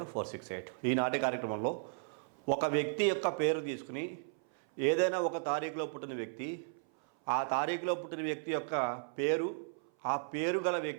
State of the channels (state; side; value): silent; left; 54 dB below the other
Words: ఈనాటి కార్యక్రమంలో ఒక వ్యక్తి యొక్క పేరు తీసుకుని ఏదైనా ఒక తారీఖులో పుట్టిన వ్యక్తి, ఆ తారీఖులో పుట్టిన వ్యక్తి యొక్క పేరు, ఆ పేరు గల